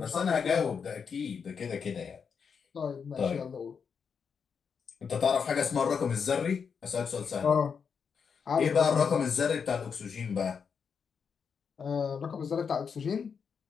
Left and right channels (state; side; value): quieter; right; 6.3 dB